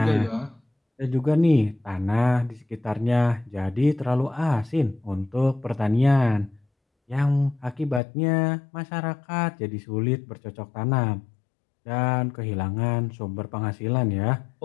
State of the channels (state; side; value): drops out; right; at 8.0 s